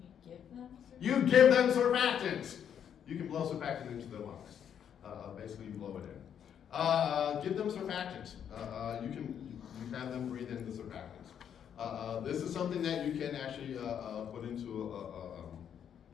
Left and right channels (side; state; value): right; quieter; 8.7 dB